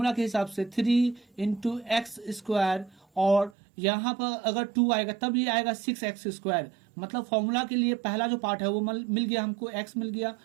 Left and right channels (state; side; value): drops out; left; at 3.5 s